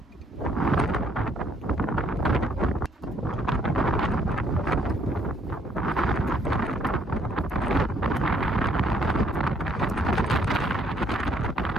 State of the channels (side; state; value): both; normal; correlation 0.67